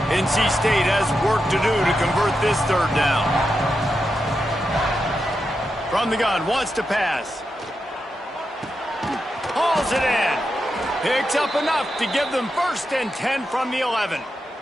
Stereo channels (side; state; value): both; normal; correlation 0.87